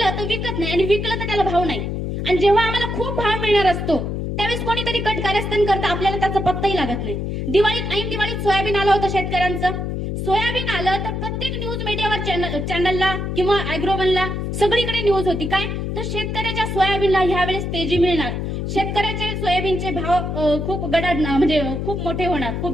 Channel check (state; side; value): noise; left; hum, 3 dB below the sound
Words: तर विकत नाही आणि विकलं तर त्याला भाव नाही. आणि जेव्हा आम्हाला खूप भाव मिळणार असतो त्यावेळेस कोणीतरी कट कारस्थान करतं, आपल्याला त्याचा पत्ताही लागत नाही. ऐन दिवाळीत सोयाबीन आलं होतं शेतकऱ्यांचं. सोयाबीन आलं तर प्रत्येक न्यूज मीडियावर चॅनलला किंवा अॅग्रोवनला सगळीकडे न्यूज होती काय, तर शेतकऱ्याच्या सोयाबीनला ह्यावेळेस तेजी मिळणार, शेतकऱ्याचे सोयाबीनचे भाव खूप गडाड म्हणजे खूप मोठे होणार,